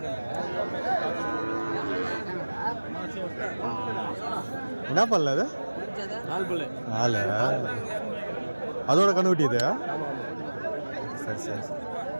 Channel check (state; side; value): inverted; both; correlation -1.00